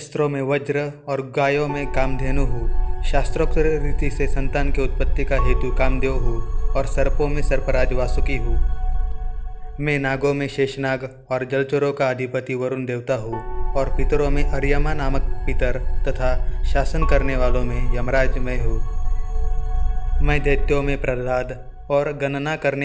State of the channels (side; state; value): both; identical; correlation 1.00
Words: में वज्र और गायों में कामधेनु हूँ। शास्त्रोक्त रीति से संतान की उत्पत्ति का हेतु कामदेव हूँ और सर्पों में सर्पराज वासुकी हूँ। मैं नागों में शेषनाग और जलचरों का अधिपति वरुण देवता हूँ और पितरों में अर्यमा नामक पितर तथा शासन करने वालों में यमराज मैं हूँ। मैं दैत्यों में प्रहलाद और गणना